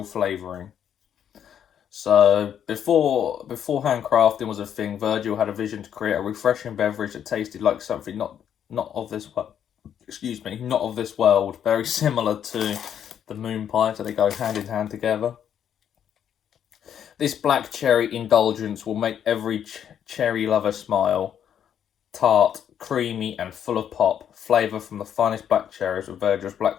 flavouring. So before handcrafting was a thing, Virgil had a vision to create a refreshing beverage that tasted like something not of this world. Excuse me, not of this world. Very similar to the moon pie, so they go hand in hand together. This black cherry indulgence will make every cherry lover smile. Tart, creamy, and full of pop. Flavour from the finest black cherries with Virgil's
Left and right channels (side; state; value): right; quieter; 9.2 dB